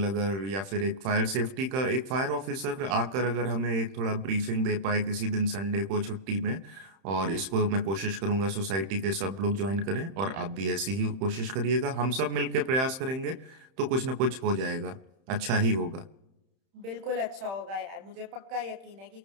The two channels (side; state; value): left; late; 31 ms